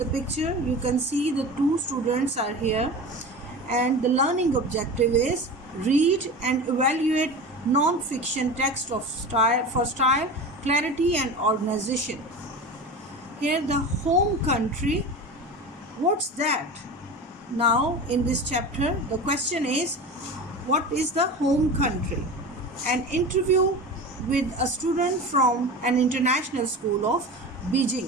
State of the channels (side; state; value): both; normal; correlation 0.31